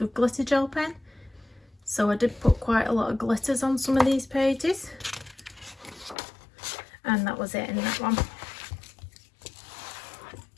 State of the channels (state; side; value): drops out; right; at 6.2 s